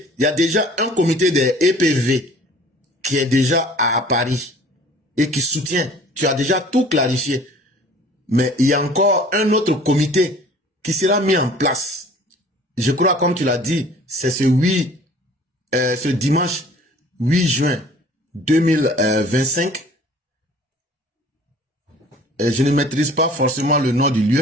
il y a déjà un comité des EPV qui est déjà à Paris et qui soutient. Tu as déjà tout clarifié. Mais il y a encore un autre comité qui sera mis en place. Je crois, comme tu l'as dit, c'est ce dimanche 8 juin 2025. Je ne maîtrise pas forcément le nom du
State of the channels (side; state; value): both; normal; correlation 0.50